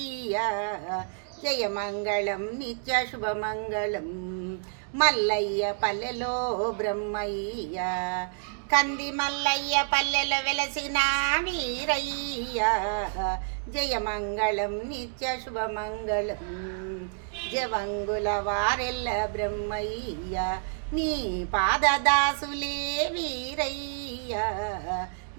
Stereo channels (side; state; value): left; silent; digital silence